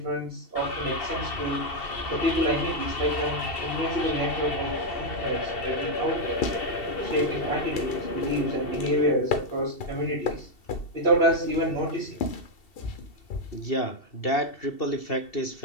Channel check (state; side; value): late; right; 2.7 ms